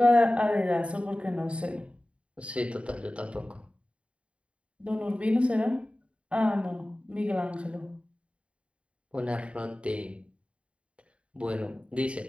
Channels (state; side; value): late; left; 0.060 ms